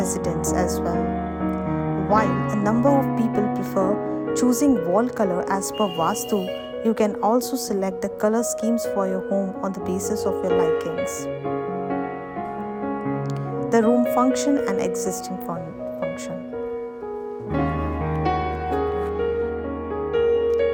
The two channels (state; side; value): identical; both; correlation 1.00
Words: as well. While a number of people prefer choosing wall color as per Vastu, you can also select the color schemes for your home on the basis of your likings. The room function and existing function.